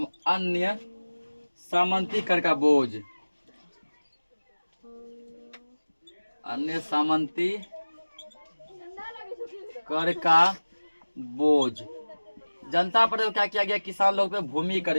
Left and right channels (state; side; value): inverted; both; correlation -1.00